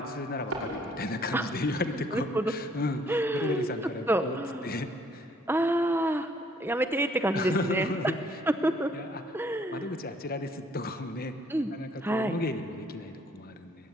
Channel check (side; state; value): both; normal; correlation 0.64